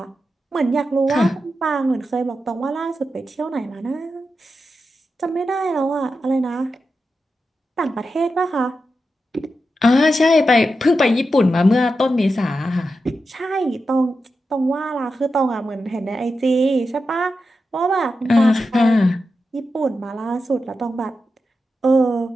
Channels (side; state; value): both; normal; correlation 0.89